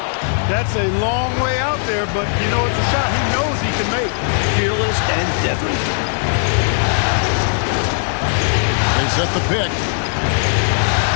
That's a long way out there, but you know it's a shot he knows he can make. Fearless and deadly. They set the pick.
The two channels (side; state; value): right; silent; digital silence